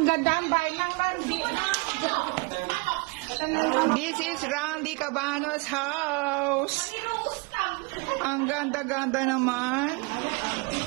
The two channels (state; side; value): quieter; left; 27.4 dB